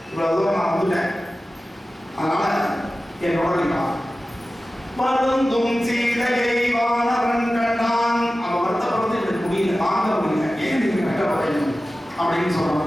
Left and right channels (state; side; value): normal; both; correlation 0.95